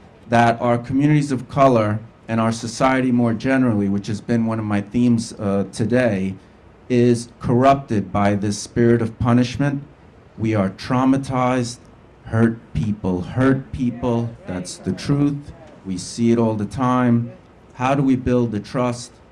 that our communities of color and our society more generally, which has been one of my themes today, is corrupted by this spirit of punishment. We are traumatized, hurt people, that's the truth. We see it all the time. How do we build the trust,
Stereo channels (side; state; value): both; identical; correlation 1.00